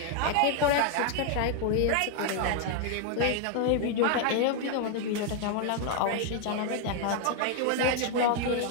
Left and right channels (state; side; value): different; both; correlation 0.00